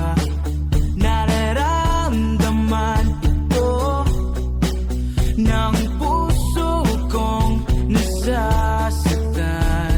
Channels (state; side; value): identical; both; correlation 1.00